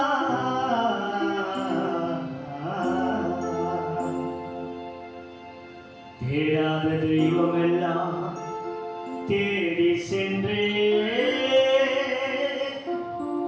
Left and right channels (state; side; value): identical; both; correlation 1.00